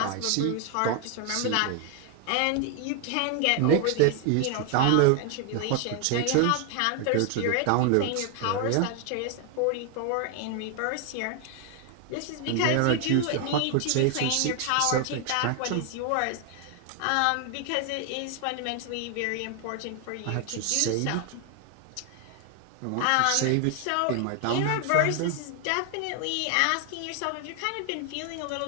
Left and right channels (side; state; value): both; different; correlation 0.00